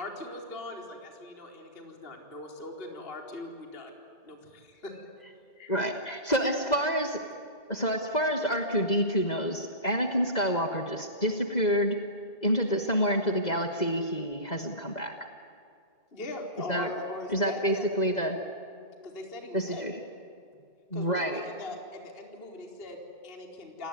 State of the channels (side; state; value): right; late; 2.0 ms